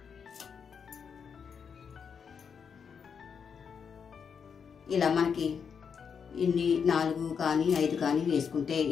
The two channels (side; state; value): right; quieter; 6.6 dB